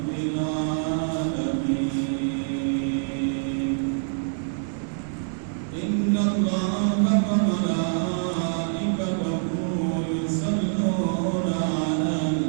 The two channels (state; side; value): silent; left; 61 dB below the other